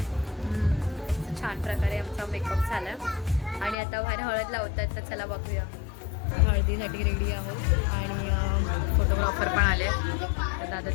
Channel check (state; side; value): drops out; right; at 3.8 s